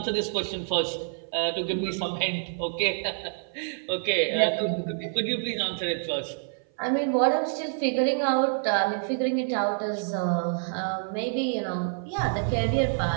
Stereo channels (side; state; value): left; silent; 57 dB below the other